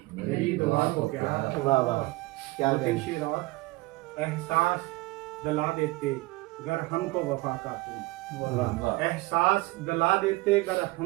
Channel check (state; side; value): quieter; left; 21.9 dB